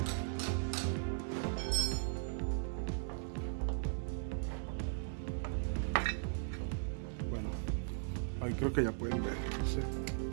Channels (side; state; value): left; silent; digital silence